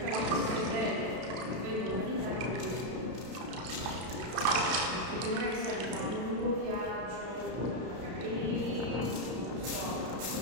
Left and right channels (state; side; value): late; left; 32 ms